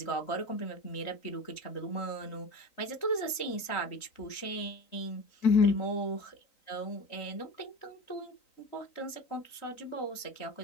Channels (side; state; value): right; late; 3.9 ms